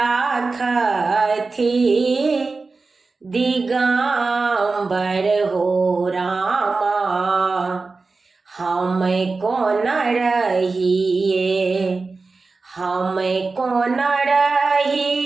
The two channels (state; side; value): quieter; left; 3.9 dB